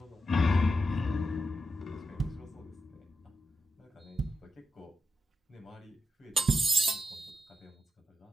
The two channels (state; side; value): normal; both; correlation 0.86